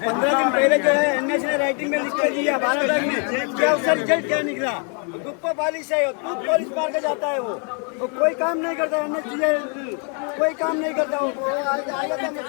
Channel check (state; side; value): quieter; right; 39.2 dB